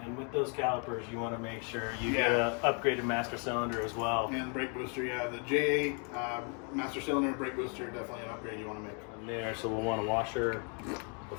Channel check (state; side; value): quieter; right; 38.5 dB